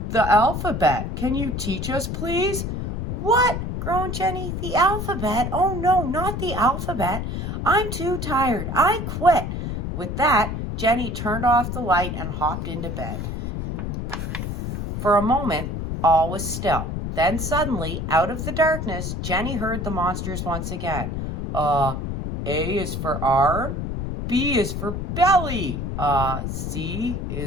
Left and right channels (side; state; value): left; noise; rumble, 4 dB below the sound